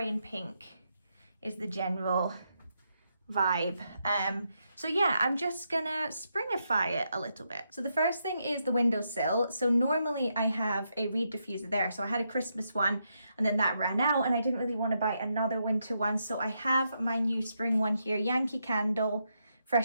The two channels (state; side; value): inverted; both; correlation -0.81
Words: and pink is the general vibe. So yeah, I'm just gonna springify it a little bit. So the first thing is the windowsill. So normally I have a reed diffuser there. So I had a Christmas one and then that ran out and I didn't really want to buy another winter one. So I have my new spring one here, Yankee Candle